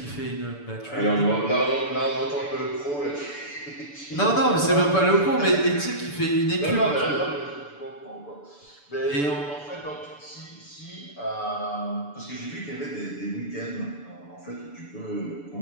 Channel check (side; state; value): right; late; 6.9 ms